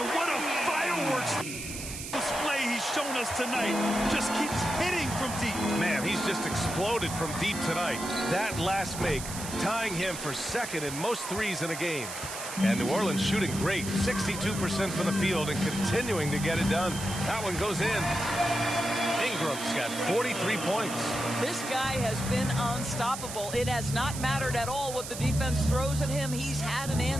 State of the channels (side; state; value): right; noise; hiss, 8 dB below the sound